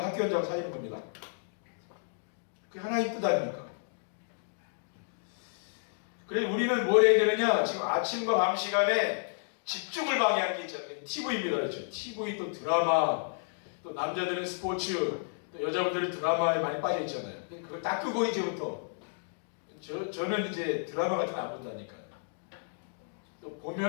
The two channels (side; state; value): right; silent; digital silence